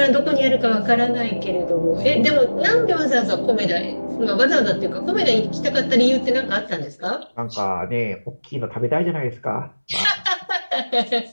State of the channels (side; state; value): both; inverted; correlation -1.00